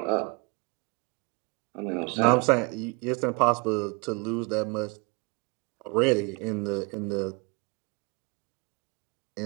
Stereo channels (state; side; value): quieter; left; 28.1 dB